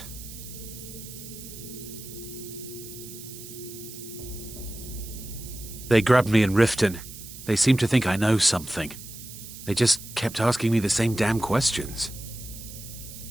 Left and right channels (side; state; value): right; noise; hiss, 14 dB below the sound